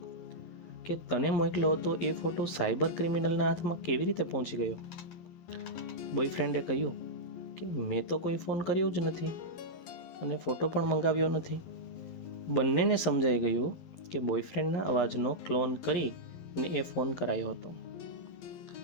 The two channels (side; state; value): right; late; 12 ms